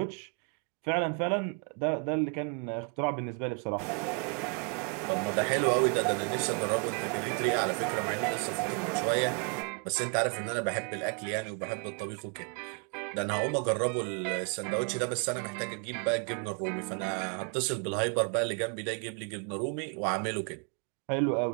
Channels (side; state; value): left; quieter; 36.9 dB